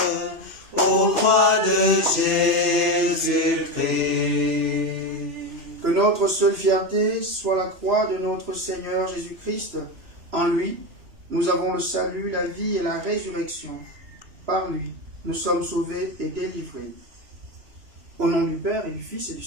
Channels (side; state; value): left; late; 2.6 ms